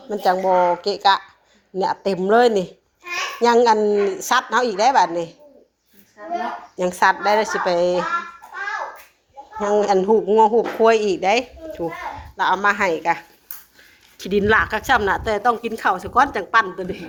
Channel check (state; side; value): identical; both; correlation 1.00